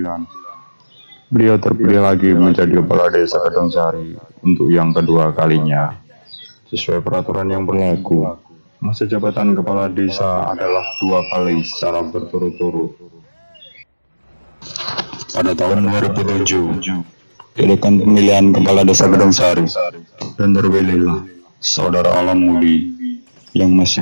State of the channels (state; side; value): inverted; both; correlation -1.00